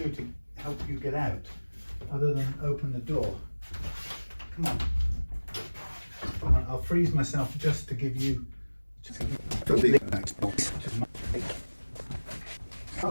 to help you get out other than open the door. Come on. Come on, I'll freeze myself just to give you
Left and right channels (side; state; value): both; inverted; correlation -1.00